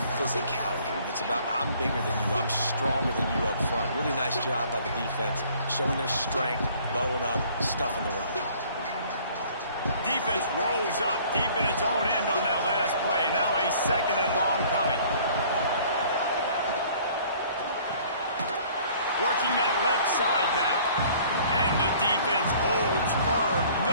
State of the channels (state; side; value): inverted; both; correlation -0.55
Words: physicality. It's about I'm bigger than you, I'm stronger than you up front. Really nice job by the defense, showing their strength, bowing up, stuffing the run. Defense rolls up deep in its own end on that last play. Now a 2nd and long coming. Working that left side now. And the defense holds firm.